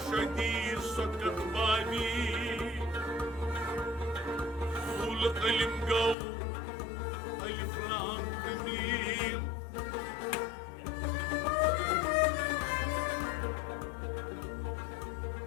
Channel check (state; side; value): drops out; right; at 6.2 s